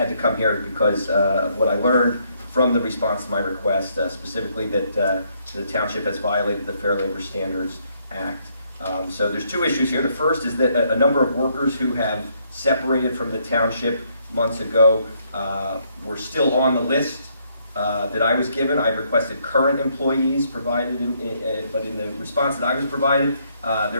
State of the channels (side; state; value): both; inverted; correlation -0.71